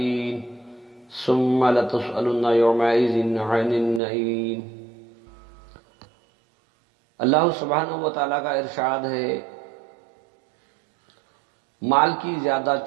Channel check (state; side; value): drops out; left; at 4.0 s